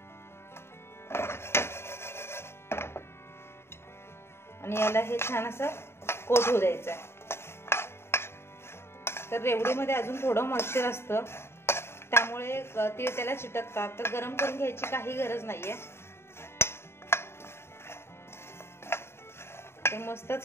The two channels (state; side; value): late; right; 0.12 ms